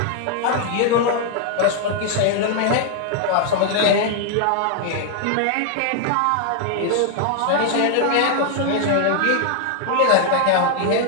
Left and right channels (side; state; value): both; different; correlation 0.00